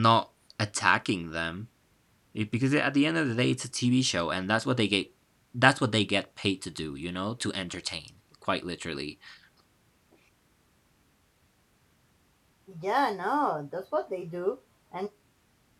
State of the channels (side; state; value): both; identical; correlation 1.00